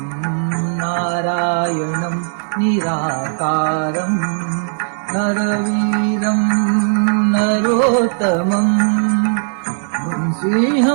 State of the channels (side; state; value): left; silent; digital silence